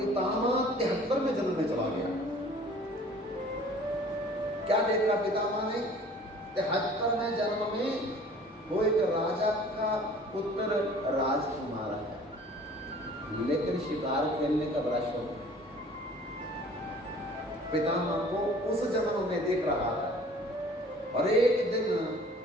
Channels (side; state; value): both; normal; correlation 0.49